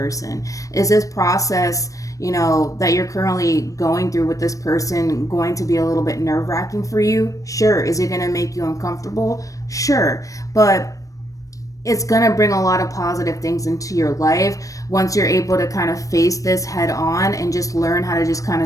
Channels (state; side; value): late; right; 0.16 ms